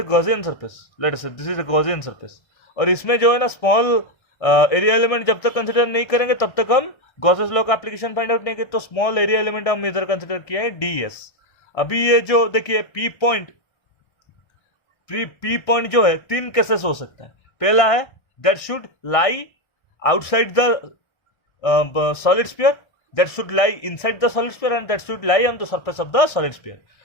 Gaussian surface, let us say this is a Gaussian surface. और इसमें जो है ना स्मॉल एरिया एलिमेंट जब तक कंसीडर नहीं करेंगे तब तक हम गॉसेस लॉ का एप्लीकेशन फाइंड आउट नहीं करेंगे। तो स्मॉल एरिया एलिमेंट हम इधर कंसीडर किया है ds। अभी ये जो देखिए पी पॉइंट जो है तीन केसेस हो सकता है। पहला है that should lie outside the solid sphere, that should lie inside the solid sphere and that should lie on the surface of the solid sphere.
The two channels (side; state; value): right; late; 1.3 ms